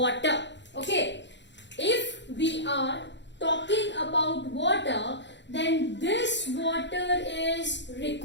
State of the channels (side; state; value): right; late; 0.52 ms